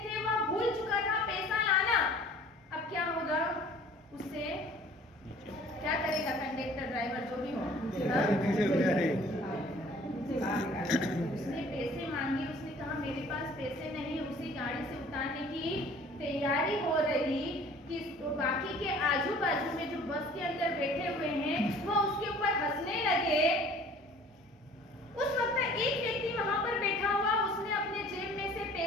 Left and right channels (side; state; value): both; normal; correlation 0.51